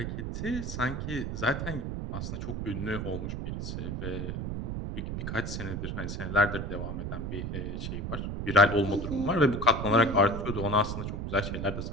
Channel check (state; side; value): noise; right; rumble, 4 dB below the sound